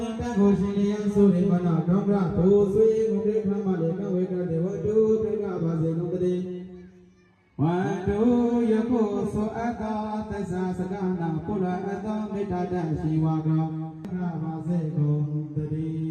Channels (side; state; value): both; identical; correlation 1.00